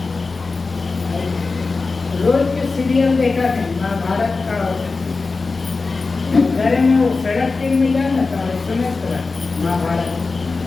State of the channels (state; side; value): quieter; right; 4.0 dB